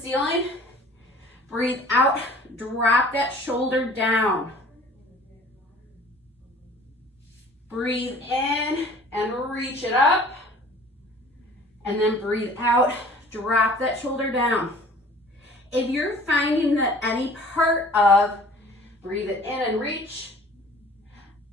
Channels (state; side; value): normal; both; correlation 0.49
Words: Breathe out, drop that shoulder down. Breathe in and reach it up. And then breathe out, drop that shoulder down. If you're finding that any part of breathe it in and reach